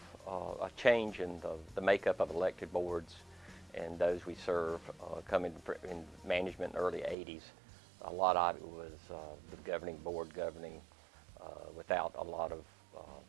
a change in the makeup of elected boards and those we serve coming in management in the early 80s. A lot of it was the governing board governing without a lot of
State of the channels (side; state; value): left; drops out; at 7.2 s